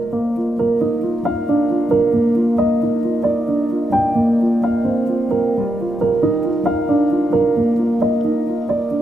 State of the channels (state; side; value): normal; both; correlation 0.84